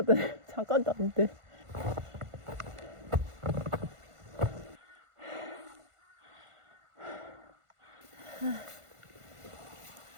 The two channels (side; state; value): left; late; 1.5 ms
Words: 잠깐도 안 돼.